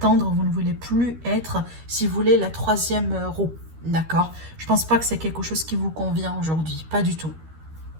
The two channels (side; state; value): left; late; 13 ms